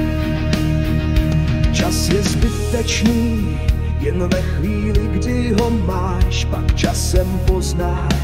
Čas je zbytečný, jen ve chvíli, kdy ho máš, pak časem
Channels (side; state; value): both; identical; correlation 1.00